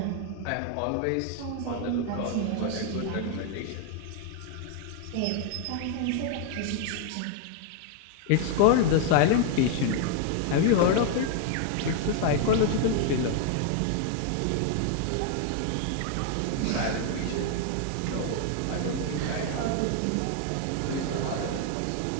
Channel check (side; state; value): both; different; correlation 0.00